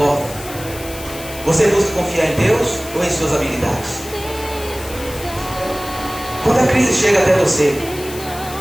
você busca confiar em Deus ou em suas habilidades? Quando a crise chega até você,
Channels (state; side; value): noise; left; hiss, 13 dB below the sound